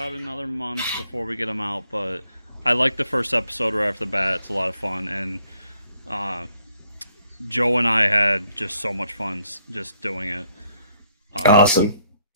another month before we get them out. But I like the first episode right off the bat. It's a lot of fun, and Joe and I had just so much fun just doing it. Awesome.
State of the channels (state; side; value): inverted; both; correlation -0.70